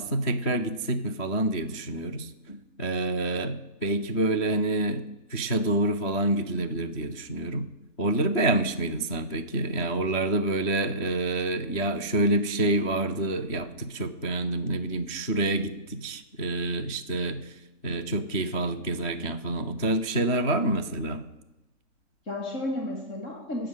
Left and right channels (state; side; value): late; right; 3.1 ms